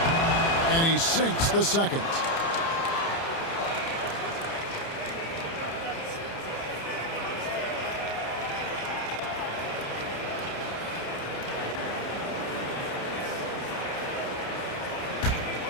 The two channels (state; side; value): late; right; 30 ms